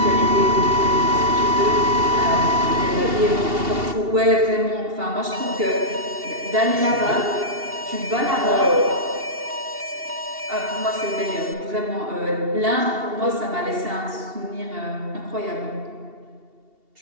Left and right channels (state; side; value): late; left; 2.7 ms